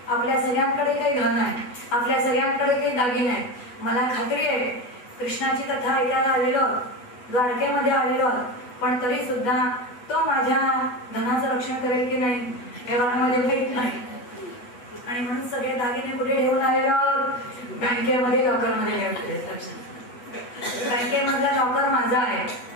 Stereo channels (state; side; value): late; right; 8.1 ms